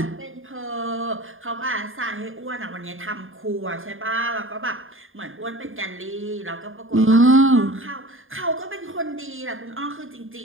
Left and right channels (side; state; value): left; late; 0.59 ms